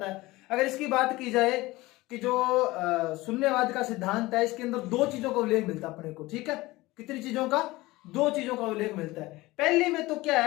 है। अगर इसकी बात की जाए कि जो शून्यवाद का सिद्धांत है, इसके अंदर दो चीजों का उल्लेख मिलता है अपने को, ठीक है। कितनी चीजों का? दो चीजों का उल्लेख मिलता है। पहले में तो क्या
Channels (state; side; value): quieter; right; 19.9 dB